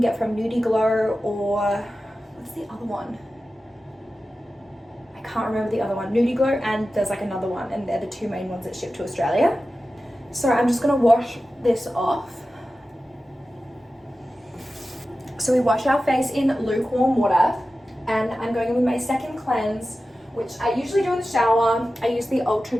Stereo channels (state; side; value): normal; both; correlation 0.94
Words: from Nudie Glow, or what's the other one? I can't remember the other one. Nudie Glow, and there's like another one, and they're the 2 main ones that ship to Australia. So I'm just gonna wash this off. So we wash our face in lukewarm water, and I'm going in with my second cleanse, which I usually do in the shower. I use the